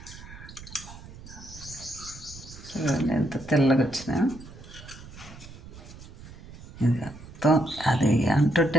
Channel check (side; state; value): right; noise; rumble, 16 dB below the sound